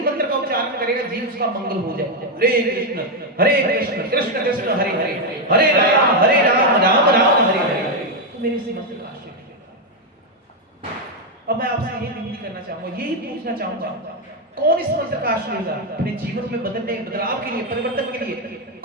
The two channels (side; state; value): both; normal; correlation 0.03